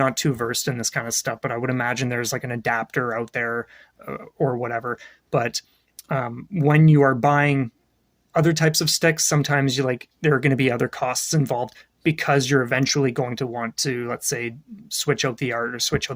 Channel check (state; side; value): identical; both; correlation 1.00